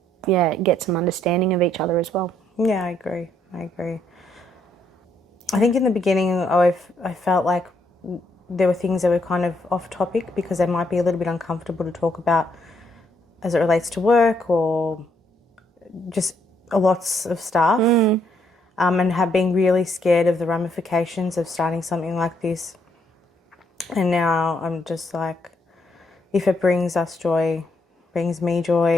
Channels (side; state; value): both; normal; correlation 0.72